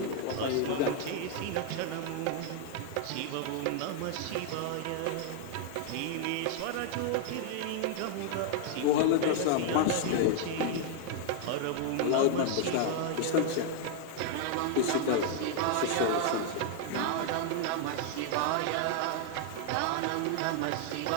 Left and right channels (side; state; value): both; different; correlation 0.00